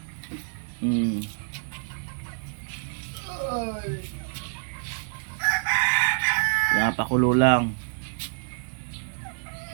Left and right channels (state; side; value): silent; left; digital silence